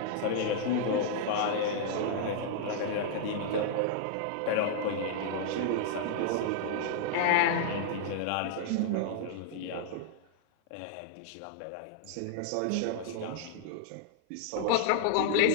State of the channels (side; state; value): both; different; correlation -0.01